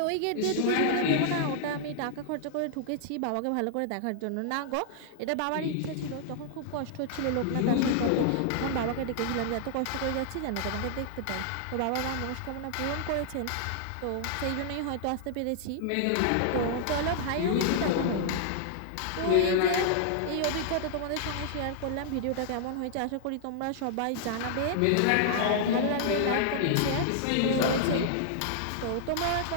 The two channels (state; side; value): different; both; correlation -0.01